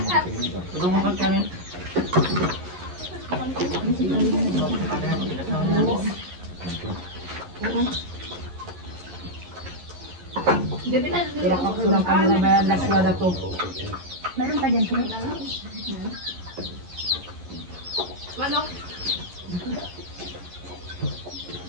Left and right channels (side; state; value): left; late; 11 ms